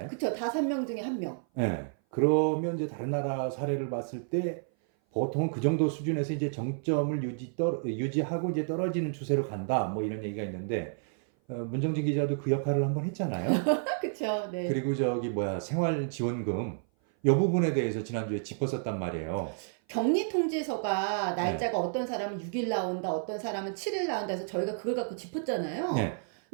그쵸. 5명 중에 1명. 네. 그러면 이제 다른 나라 사례를 봤을 때 보통 그 정도 수준에서 이제 정점을 유지하고 이제 떨어지는 추세로 간다. 뭐 이런 얘기가 있는데, 문정진 기자도 그 역할을 한번 했잖아요. 그쵸. 네. 그리고 생활지원금 이 부분에 대해서 지난주에 짚었었단 말이에요. 격리 통지서가 날짜가 어떤 사람은 6일 나온다, 어떤 사람은 7일 나온다 해서 저희가 그걸 갖고 짚었잖아요. 네.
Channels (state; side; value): silent; left; 56 dB below the other